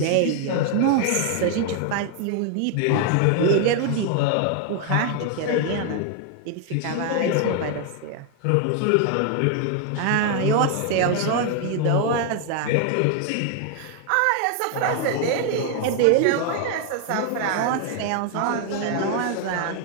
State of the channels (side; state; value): both; different; correlation 0.01